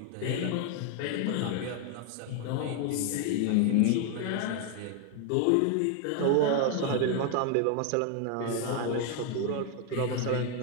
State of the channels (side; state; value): both; different; correlation 0.01